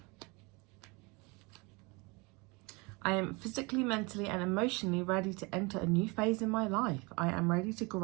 I am physically, mentally, and emotionally ready to enter a new phase in my life. I am ready to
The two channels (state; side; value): quieter; left; 27.6 dB